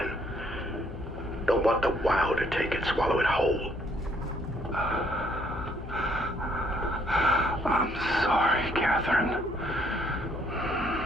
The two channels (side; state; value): left; noise; hum, 10 dB below the sound